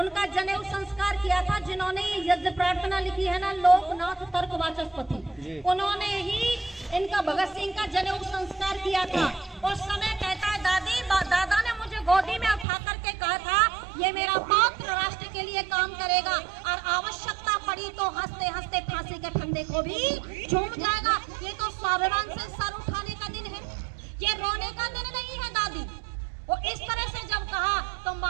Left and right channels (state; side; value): drops out; left; at 12.7 s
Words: जनेऊ संस्कार किया था, जिन्होंने यज्ञ प्रार्थना लिखी है ना, लोकनाथ तर्क वाचस्पति, उन्होंने ही इनका भगत सिंह का जनेऊ संस्कार किया था। उस समय कहता है, दादी, दादा ने मुझे गोदी में उठा करके कहा था, ये मेरा पौत्र राष्ट्र के लिए काम करेगा, और आवश्यकता पड़ी तो हंसते हंसते फांसी के फंदे को भी झूम जाएगा। ये तो स्वाभिमान से सर उठाने का दिन है, ये रोने का दिन नहीं है। दादी वो इस तरह से जब कहा तो